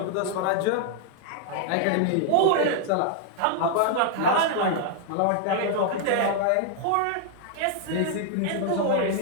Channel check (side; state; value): both; different; correlation 0.00